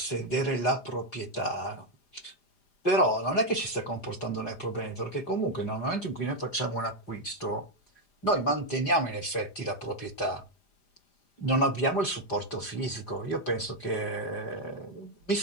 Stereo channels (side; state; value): right; late; 5.0 ms